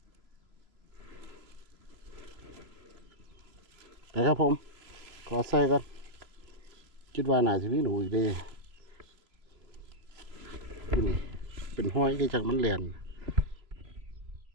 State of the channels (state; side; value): late; left; 3.0 ms